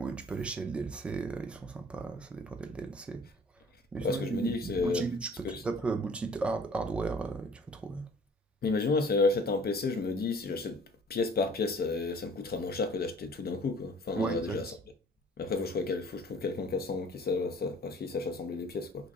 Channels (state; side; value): normal; both; correlation 0.52